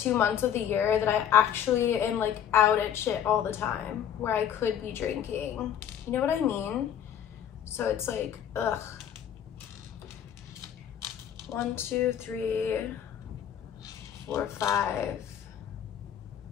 months of the year that I actually am like out at shit all the time, where I could be drinking. You know what I mean? So it's like, ugh. 1, 2, 3, 4, 5,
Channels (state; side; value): quieter; right; 9.5 dB